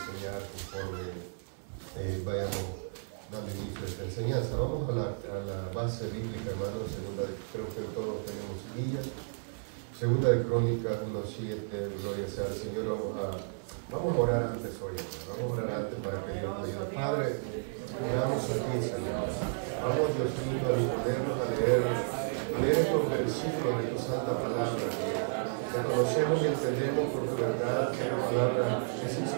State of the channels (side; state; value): left; silent; 56 dB below the other